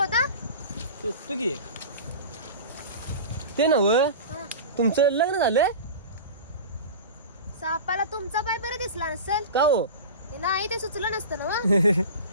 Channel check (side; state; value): both; inverted; correlation -0.32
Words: शोधतो की. ते नव तुमचं लग्न झालंय? सापाला तुमचा पाय बरं दिसला नसेल. का हो? हे नाही ते सुचलं नसतं ना.